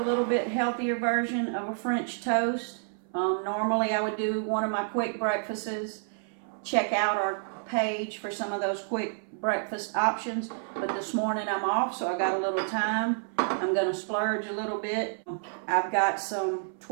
little bit healthier version of a French toast. Normally I would do one of my quick breakfasts. Check out our page for some of those quick breakfast options. But this morning I'm off, so I got a little time. I'm going to splurge a little bit. I've got some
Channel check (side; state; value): left; silent; 58 dB below the other